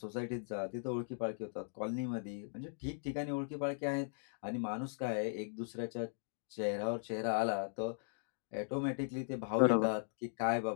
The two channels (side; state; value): right; silent; digital silence